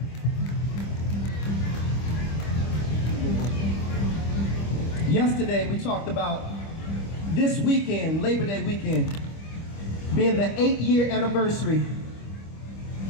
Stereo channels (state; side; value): late; right; 25 ms